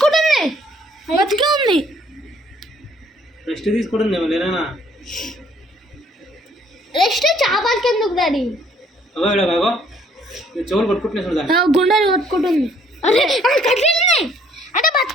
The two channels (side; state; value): both; normal; correlation 0.62